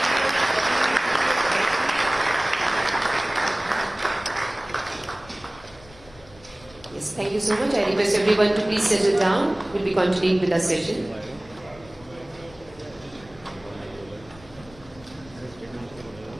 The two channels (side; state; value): left; noise; rumble, 23 dB below the sound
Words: Thank you so much. I request everyone to please settle down. We'll be continuing with our session.